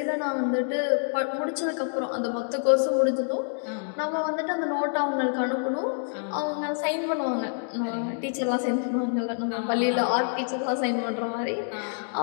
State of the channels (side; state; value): right; silent; 60 dB below the other